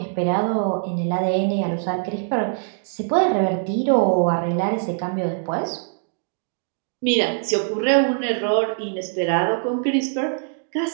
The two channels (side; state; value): left; silent; digital silence